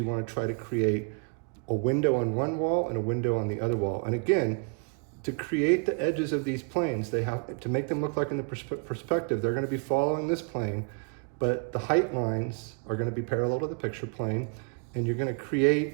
want to try to create a window on one wall and a window on the other wall. And again, to create the edges of these planes, they have to make them look like in the perspective, they're going to be following this plane, but the height lines are going to be parallel to the picture plane, and you're going to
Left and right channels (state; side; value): quieter; left; 37.6 dB